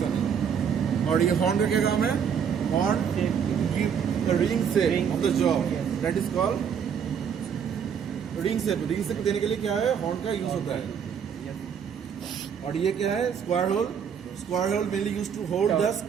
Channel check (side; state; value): left; quieter; 7.6 dB